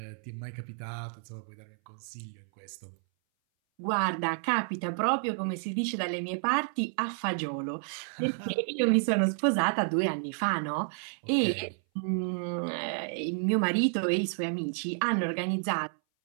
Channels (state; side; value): silent; left; 57 dB below the other